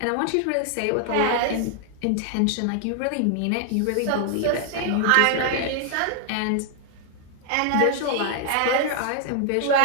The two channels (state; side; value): different; both; correlation 0.00